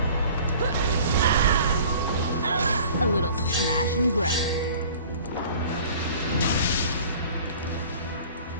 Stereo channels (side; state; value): both; inverted; correlation -0.47